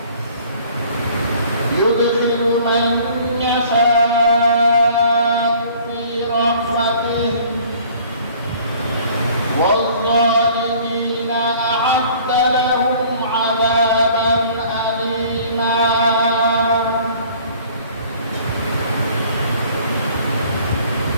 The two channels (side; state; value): both; inverted; correlation -0.53